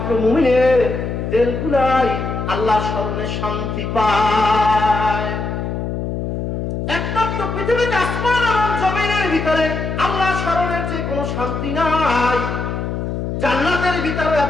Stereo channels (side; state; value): left; noise; hum, 3 dB below the sound